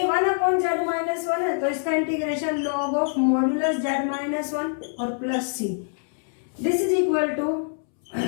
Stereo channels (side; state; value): right; silent; 62 dB below the other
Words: 1 अपॉन z माइनस 1 है तो इसका integration log of modulus z minus 1 और plus c. This is equal to